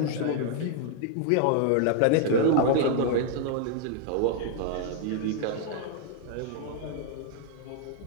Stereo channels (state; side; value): different; both; correlation 0.00